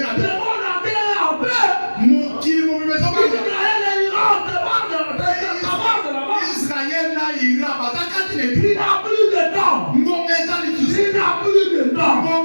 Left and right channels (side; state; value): both; inverted; correlation -1.00